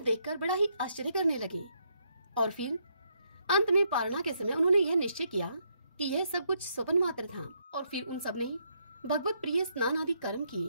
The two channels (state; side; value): inverted; both; correlation -0.75